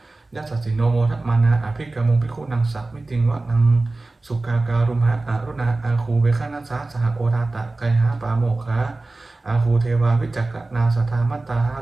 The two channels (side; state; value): left; quieter; 3.2 dB